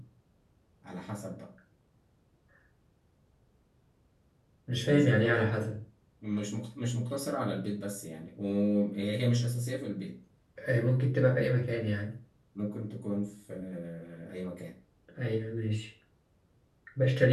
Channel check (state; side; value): identical; both; correlation 1.00